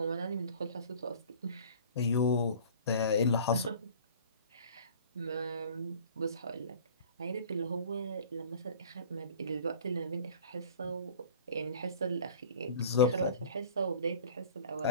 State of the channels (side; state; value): both; inverted; correlation -0.45